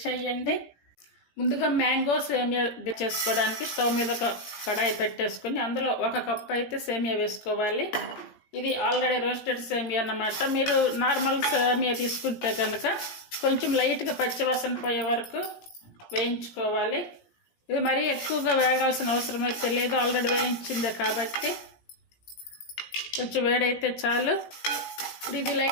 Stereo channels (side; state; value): right; late; 17 ms